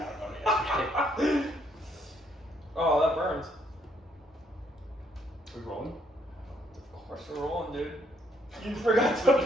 about it yesterday. Oh, that burns. We rolling? Of course we're rolling, dude. You forgot to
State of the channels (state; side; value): normal; both; correlation 0.69